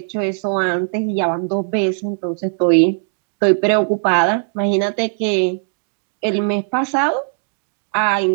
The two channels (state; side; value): silent; left; 67 dB below the other